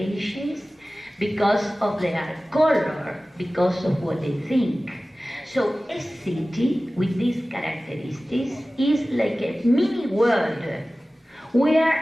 because of their color, because of what they think. So a city with these characteristics is like a mini world where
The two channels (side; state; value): both; normal; correlation 0.97